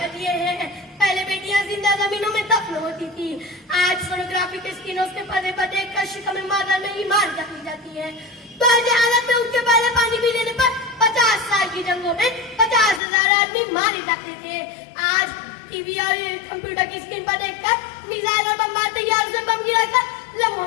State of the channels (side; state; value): right; drops out; at 13.0 s